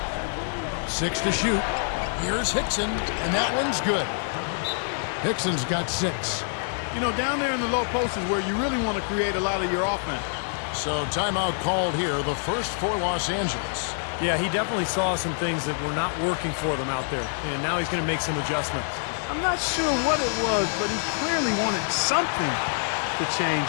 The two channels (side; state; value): right; silent; digital silence